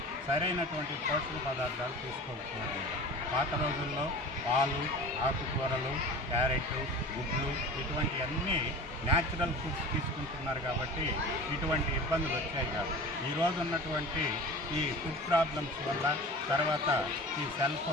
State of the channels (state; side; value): normal; both; correlation 0.37